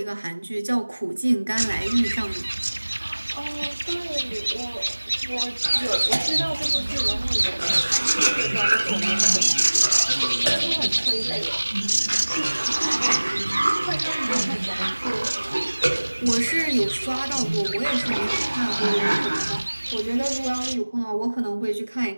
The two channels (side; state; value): both; inverted; correlation -1.00